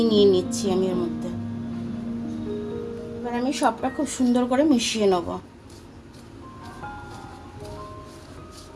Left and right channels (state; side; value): identical; both; correlation 1.00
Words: নিয়ে নিচ্ছি আমি এর মধ্যে। এবার আমি সবটা খুব সুন্দর করে মিশিয়ে নেব।